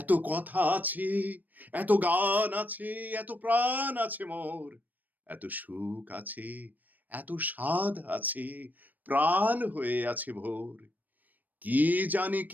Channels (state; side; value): late; left; 0.084 ms